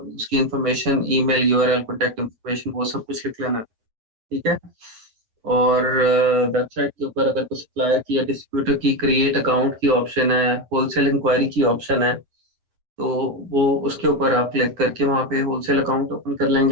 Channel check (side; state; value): left; late; 9.4 ms